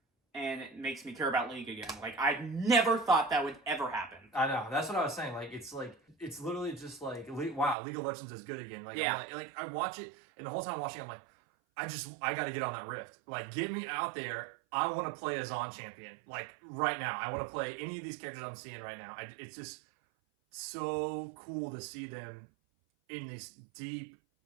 And it makes me care about League again. Like, I never thought that would ever happen. I know. That's what I was saying. Like, it's literally just like, wow, League of Legends is good again. Like, I'm like I watch it, and the whole time watching, I'm like, I got to get on that rift. Like, get me out there. I want to play a Zon champion. Like, right now. I want to play any of these characters I'm seeing right now. It's just so cool to see them in this deep,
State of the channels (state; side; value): drops out; left; at 7.8 s